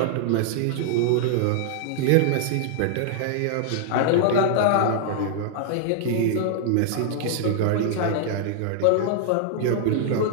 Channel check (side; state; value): both; different; correlation -0.01